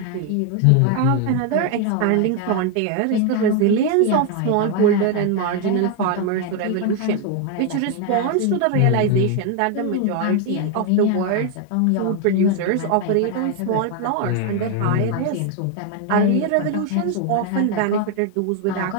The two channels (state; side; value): different; both; correlation 0.01